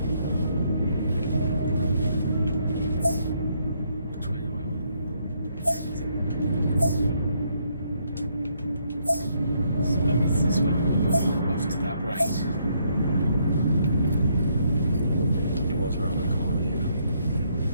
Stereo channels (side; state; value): both; inverted; correlation -0.72